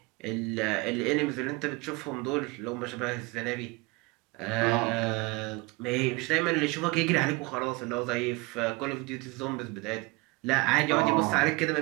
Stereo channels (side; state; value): left; quieter; 25.5 dB